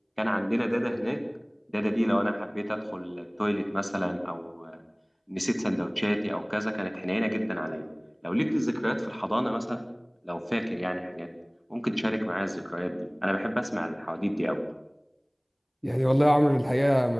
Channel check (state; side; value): identical; both; correlation 1.00